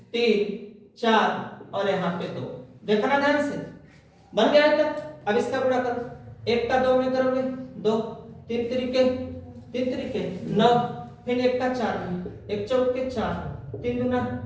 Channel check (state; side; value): identical; both; correlation 1.00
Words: 3 4 और यहाँ पे 2। देखना ध्यान से, बन गया है तक। अब इसका गुणा करो, 1 का 2 में करोगे 2, 3 त्रिके 9, फिर 1 का 4 में 1 चौके 4, 3